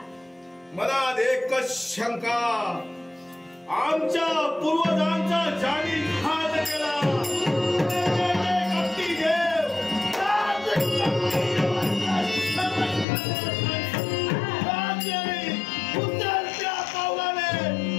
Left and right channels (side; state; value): right; drops out; at 13.1 s